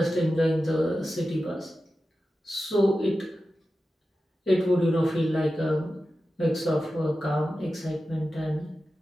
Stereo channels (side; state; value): both; normal; correlation 0.93